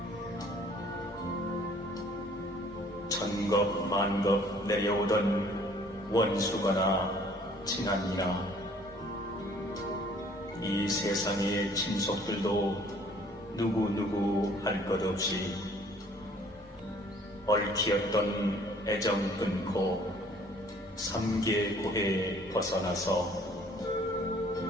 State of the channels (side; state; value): both; normal; correlation 0.57